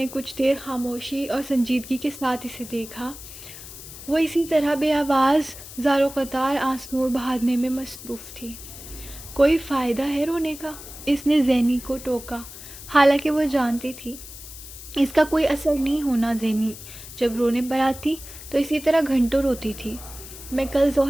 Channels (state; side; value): noise; left; hiss, 14 dB below the sound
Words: کچھ دیر خاموشی اور سنجیدگی کے ساتھ اسے دیکھا۔ وہ اسی طرح بے آواز زار و قطار آنسو بہانے میں مصروف تھی۔ کوئی فائدہ ہے رونے کا؟ اس نے زینی کو ٹوکا، حالانکہ وہ جانتی تھی اس کا کوئی اثر نہیں ہونا۔ زینی جب رونے پر آتی تو اسی طرح گھنٹوں روتی تھی۔ میں کل